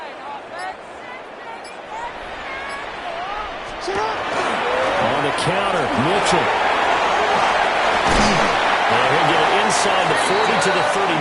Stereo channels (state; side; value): identical; both; correlation 1.00